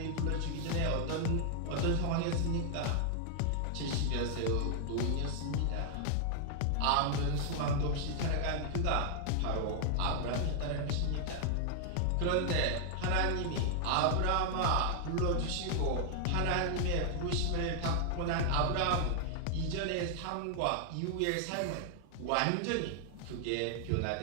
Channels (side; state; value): both; different; correlation 0.00